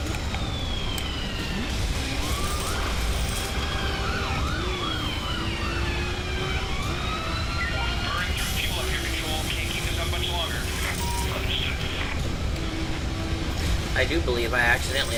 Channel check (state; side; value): identical; both; correlation 1.00